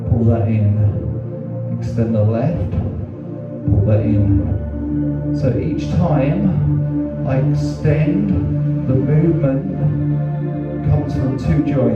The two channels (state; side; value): identical; both; correlation 1.00